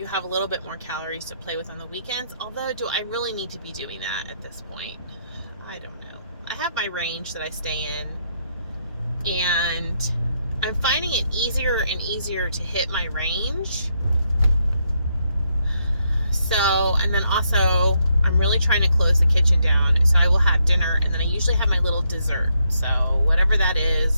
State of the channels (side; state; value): both; inverted; correlation -0.77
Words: have a little bit more calories to play with on the weekends. Although, do I really need to be doing that at this point? I don't know. I have my range that I stay in, and I'm finding it easier and easier to hit my range. So, and then also, I'm really trying to close the kitchen down. So I will have dinner, and then I usually have my little dessert. So whatever that